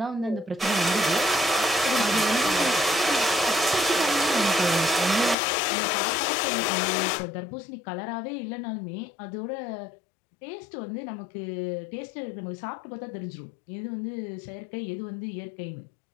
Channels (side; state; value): right; drops out; at 5.4 s